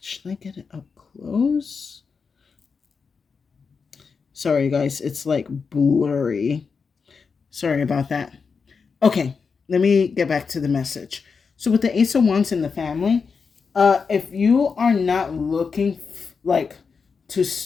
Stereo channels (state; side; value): quieter; right; 5.4 dB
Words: I get it up close? Sorry, guys. It's like blurry. Sorry about that. Okay, let me get back to the message. So with the Ace of Wands in the family, if you are not looking like to